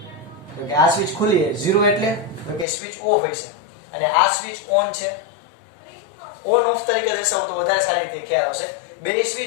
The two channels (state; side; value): drops out; right; at 2.7 s